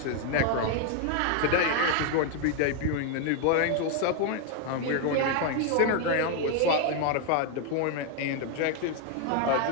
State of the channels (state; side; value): different; both; correlation 0.01